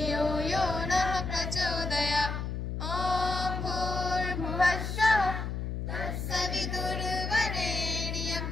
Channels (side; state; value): left; noise; hum, 4 dB below the sound